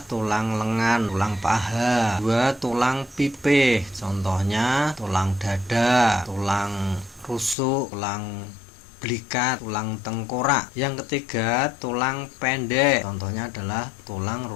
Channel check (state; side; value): drops out; right; at 7.6 s